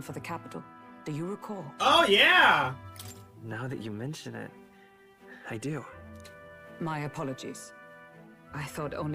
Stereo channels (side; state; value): both; identical; correlation 1.00